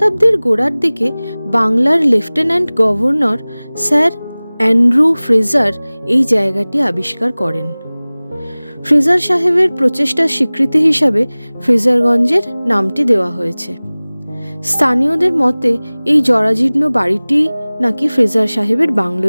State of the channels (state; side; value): inverted; both; correlation -0.99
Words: গোড়ার দিকে বাংলার lieutenant governor sir Andrew Fraser এই জায়গাটি আবিষ্কার করেন। ফ্রেজার সাহেবের প্রচেষ্টার স্বীকৃতি হিসাবে ফ্রেজারগঞ্জের নামটি দেওয়া হয়েছে। স্থানীয়দের মতে এই জরাজীর্ণ বাড়িটি নাকি ফ্রেজার সাহেবের বাংলো